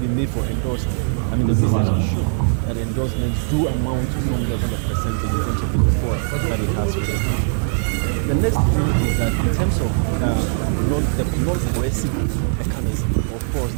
made for endorsement. I mean, the message is sure that endorsements do amount to some level of percentage in terms of the support that it has for them. The next thing is that in terms of the non-coercive mechanism, of course,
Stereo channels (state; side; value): silent; left; digital silence